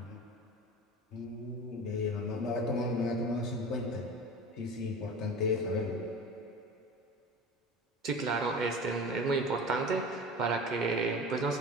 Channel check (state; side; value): normal; both; correlation 0.34